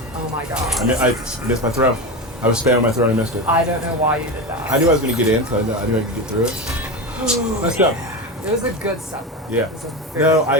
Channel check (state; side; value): normal; both; correlation 0.20